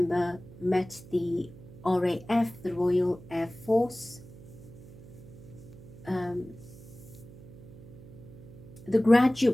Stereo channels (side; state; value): right; noise; hum, 18 dB below the sound